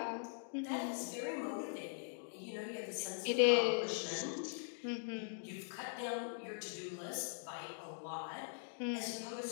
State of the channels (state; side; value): silent; right; digital silence